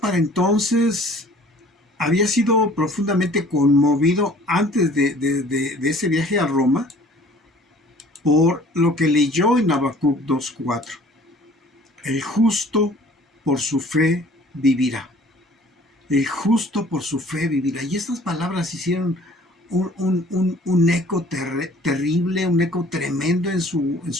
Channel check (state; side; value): normal; both; correlation 0.52